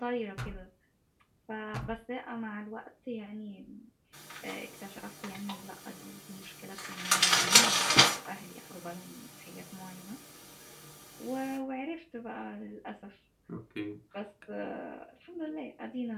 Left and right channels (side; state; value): both; identical; correlation 1.00